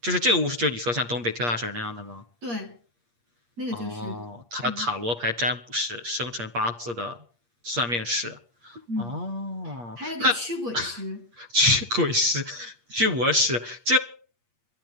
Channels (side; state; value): left; late; 8.5 ms